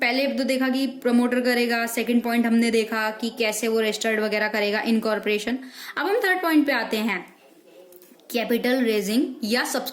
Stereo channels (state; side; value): identical; both; correlation 1.00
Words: पहले तो देखा कि प्रमोटर करेगा, सेकंड पॉइंट हमने देखा कि कैसे वो रजिस्टर्ड वगैरह करेगा इनकॉर्पोरेशन। अब हम थर्ड पॉइंट पे आते हैं, कैपिटल रेजिंग या